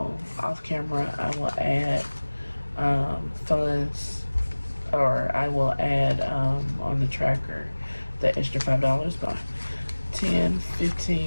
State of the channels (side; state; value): both; inverted; correlation -1.00